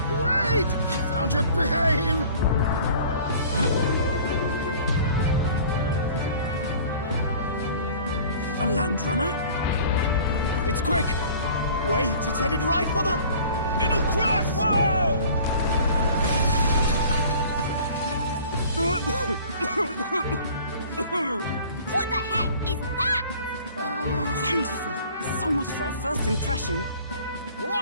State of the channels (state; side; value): inverted; both; correlation -0.47